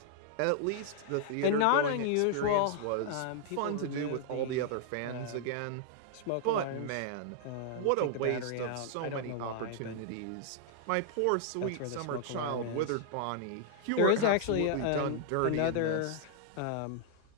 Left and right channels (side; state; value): both; different; correlation -0.01